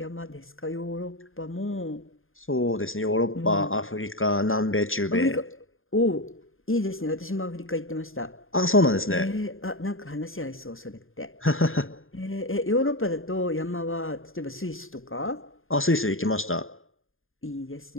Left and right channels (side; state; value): right; late; 0.60 ms